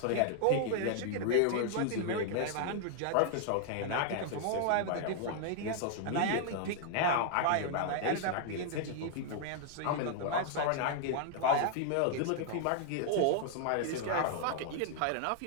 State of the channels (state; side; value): different; both; correlation -0.01